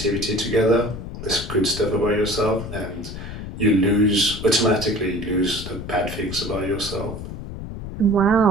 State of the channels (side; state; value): left; noise; rumble, 9 dB below the sound